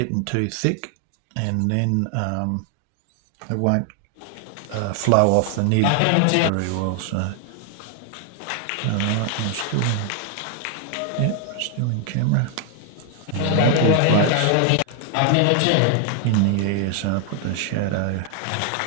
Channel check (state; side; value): different; both; correlation 0.00